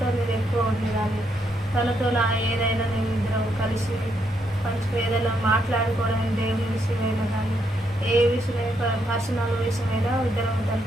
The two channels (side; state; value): both; normal; correlation 0.77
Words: నేను ఎక్కువ ఉండేదాన్ని. తనతో ఏదైనా నేను ఇద్దరం కలిసి మంచిగా ఏదైనా మాట్లాడుకోవడం, దేవుని విషయమైనా కానీ ఏ విషయమైనా పర్సనల్ విషయమైనా ఇద్దరం